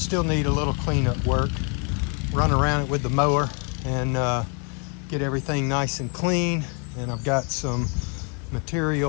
need a little cleanup work. Run around it with the mower and get everything nice and clean. And I've got some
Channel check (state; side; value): quieter; right; 35.4 dB